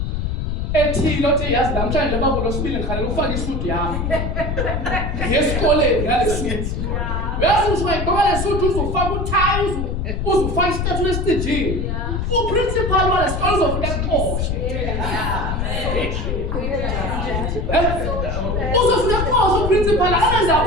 ethile othi yazi namhlanje babo losibili ngikhalela ufake isuit yami. Ngesikoleni ngale suit. Yazi usuyigqoka le suit uzofaka utie uzofaka istatue esitejini. Uprincipal wale sikole uzofika kuqoshe. Uzofika kuqoshe uprincipal angenza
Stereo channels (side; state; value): left; noise; rumble, 1 dB below the sound